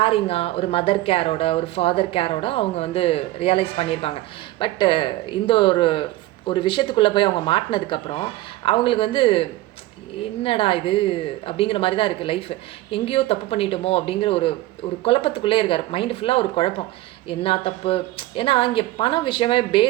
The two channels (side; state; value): left; quieter; 17.0 dB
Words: ஒரு மதர் கேரோட, ஒரு ஃபாதர் கேரோட அவங்க வந்து ரியலைஸ் பண்ணியிருப்பாங்க. பட்டு இந்த ஒரு விஷயத்துக்குள்ளே போய் அவங்க மாட்டினதுக்கப்புறம் அவங்களுக்கு வந்து என்னடா இது அப்படிங்கிற மாதிரி தான் இருக்குது லைஃப். எங்கேயோ தப்பு பண்ணிட்டோமோ அப்படிங்கிற ஒரு குழப்பத்துக்குள்ளே இருக்கார். மைண்டு ஃபுல்லாக ஒரு குழப்பம். என்ன தப்பு? ஏன்னா இங்கே பணம் விஷயமே